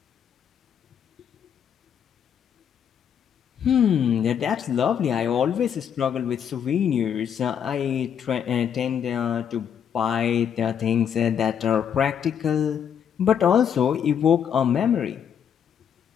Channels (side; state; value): right; quieter; 8.3 dB